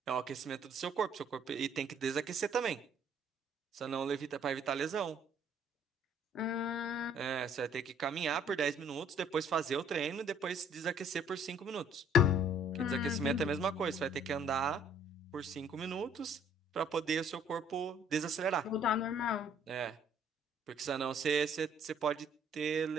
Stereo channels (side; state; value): both; normal; correlation 0.59